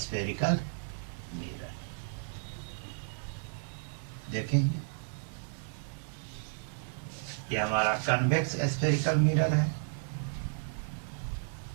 मिरर देखेंगे, ये हमारा कन्वेक्स स्फेरिकल मिरर है।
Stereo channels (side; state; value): left; silent; 56 dB below the other